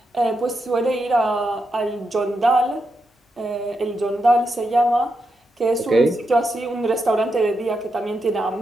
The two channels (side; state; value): both; normal; correlation 0.85